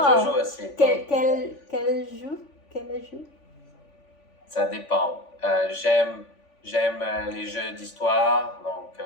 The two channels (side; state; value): right; late; 3.5 ms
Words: Je joue aussi. Quel jeu? Ça dépend. J'aime les jeux d'histoire, donc